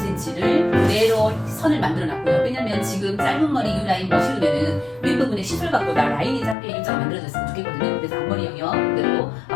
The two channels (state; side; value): drops out; right; at 6.6 s